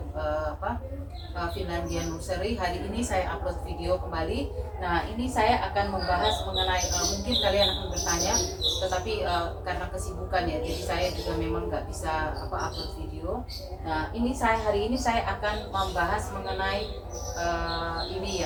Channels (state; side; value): identical; both; correlation 1.00